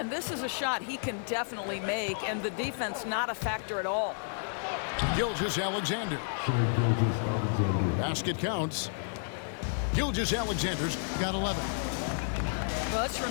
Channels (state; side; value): silent; right; digital silence